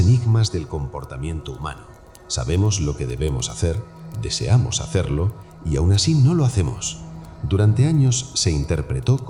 del comportamiento humano. Sabemos lo que debemos hacer, deseamos hacerlo y aún así no lo hacemos. Durante años se interpretó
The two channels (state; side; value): identical; both; correlation 1.00